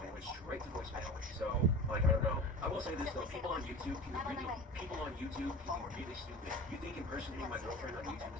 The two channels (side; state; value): both; normal; correlation 0.34